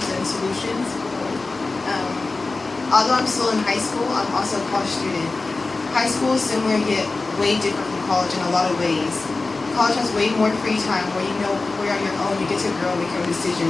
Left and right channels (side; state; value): right; quieter; 3.6 dB